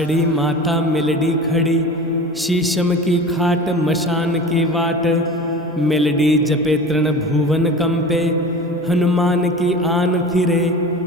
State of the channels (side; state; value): both; normal; correlation 0.35